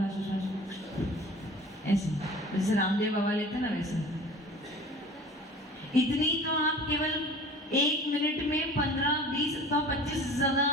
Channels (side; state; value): both; normal; correlation 0.42